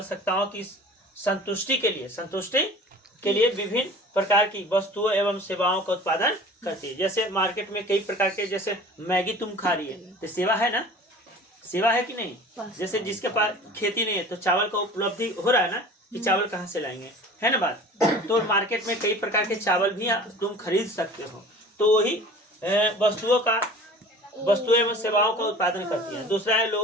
की संतुष्टि के लिए विभिन्न प्रकार की वस्तुओं एवं सेवाओं का उत्पादन करती है। जैसे मार्केट में कई प्रकार के, जैसे मैगी तुम खा रही है तो सेवा है ना, सेवा है कि नहीं? जैसे जिसके पास खेती नहीं है तो चावल का उपलब्धि हो रहा है ना, कि चावल कहाँ से लाएंगे, है ना बात। तो मार्केट में कई प्रकार के चावल भी तुम खरीद सकते हो। तो वही वस्तुएं एवं सेवाओं का उत्पादन करती है। दूसरा है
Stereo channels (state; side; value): normal; both; correlation 0.42